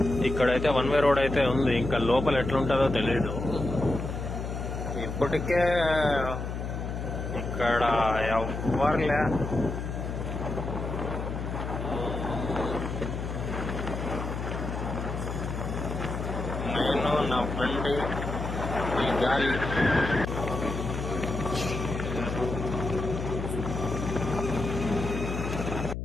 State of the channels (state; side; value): noise; left; hum, 5 dB below the sound